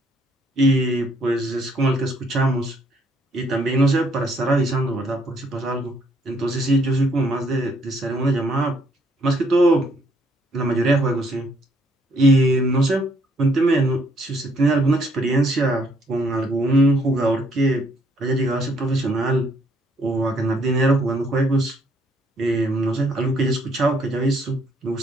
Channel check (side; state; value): both; normal; correlation 0.68